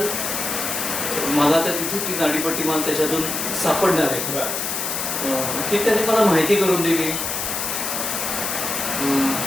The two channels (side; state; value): left; noise; hiss, 2 dB below the sound